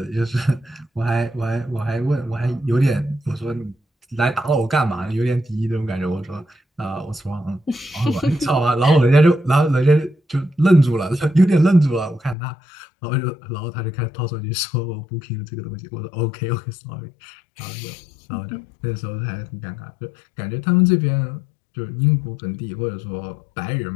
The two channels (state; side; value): drops out; right; at 12.4 s